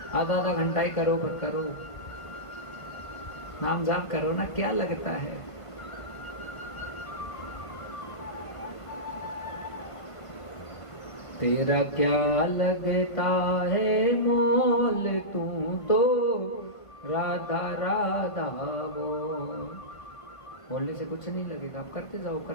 आधा घंटा ही करो, पर करो, नाम जाप करो ना, क्या लगता है। तेरा क्या लगता है मोल, तू तो राधा राधा बोलने से कुछ नहीं लगेगा। आप करते जाओ,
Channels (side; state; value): right; late; 1.5 ms